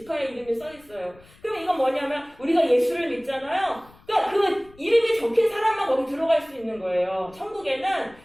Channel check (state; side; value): noise; left; rumble, 26 dB below the sound